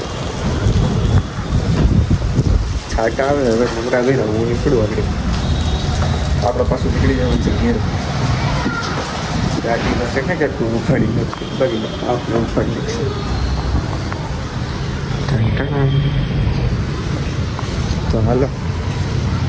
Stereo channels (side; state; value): both; identical; correlation 1.00